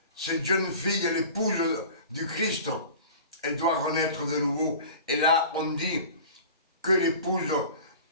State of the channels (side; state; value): both; inverted; correlation -0.40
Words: cette jeune fille, l'épouse du Christ, elle doit renaître de nouveau. Et là, on dit que l'épouse